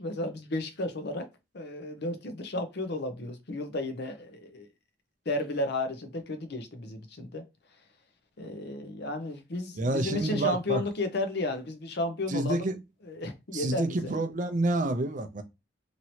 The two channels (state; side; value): normal; both; correlation 0.35